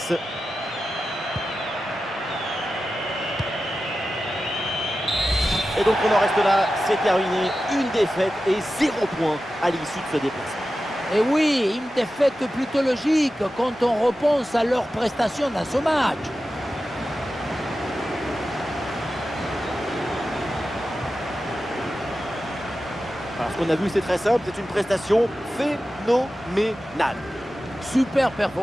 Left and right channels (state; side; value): normal; both; correlation 0.93